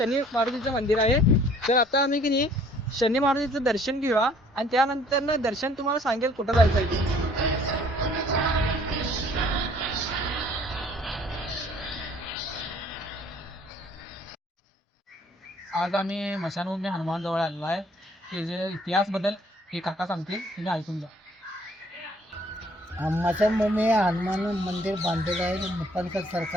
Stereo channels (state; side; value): normal; both; correlation 0.58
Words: मारुतीचं मंदिर आहे. तर आता आम्ही की नाही शनी मारुतीचं दर्शन घेऊया आणि त्यानंतर ना दर्शन तुम्हाला सांगेल कुठं जायचं आहे ते. आज आम्ही मशानभूमी हनुमान जवळ आलेलो आहे. ते जे इतिहास बद्दल हे काका सांगतील, तुम्ही ऐकून जा. मशानभूमी हनुमान मंदिर बांधलेलं आहे निपाणकर